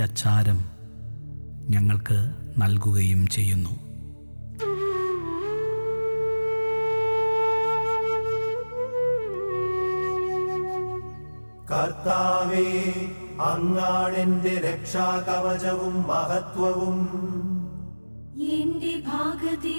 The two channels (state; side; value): inverted; both; correlation -1.00